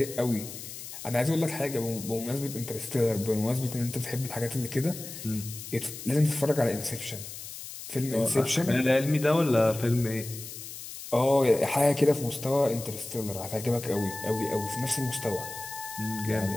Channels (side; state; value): left; noise; hiss, 11 dB below the sound